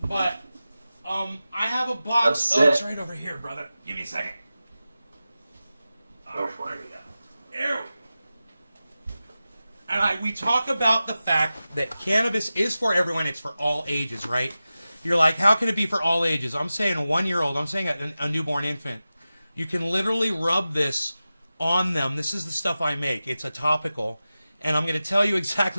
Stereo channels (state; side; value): inverted; both; correlation -0.94